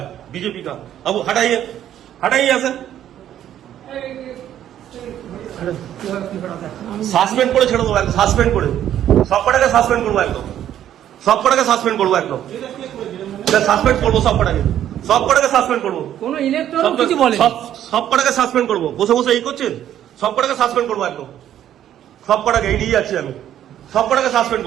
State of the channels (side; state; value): left; quieter; 11.1 dB